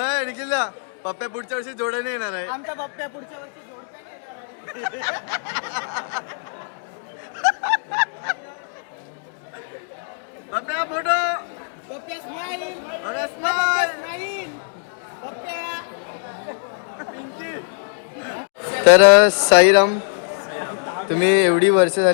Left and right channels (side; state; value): right; silent; digital silence